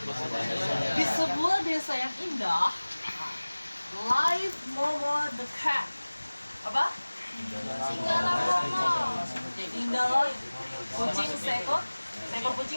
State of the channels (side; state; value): both; inverted; correlation -1.00